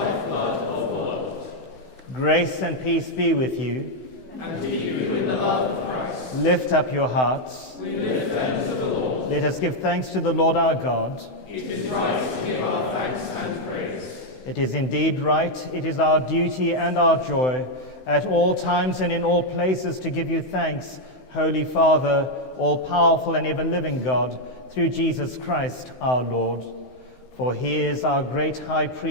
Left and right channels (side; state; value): right; late; 16 ms